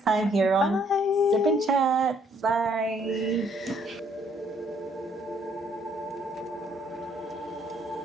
time here on Bye. Sip and Chat. Bye.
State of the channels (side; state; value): both; normal; correlation 0.65